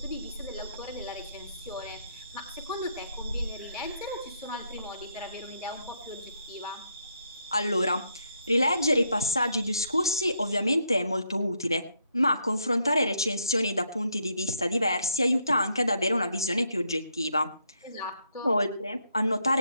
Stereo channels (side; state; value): both; inverted; correlation -0.75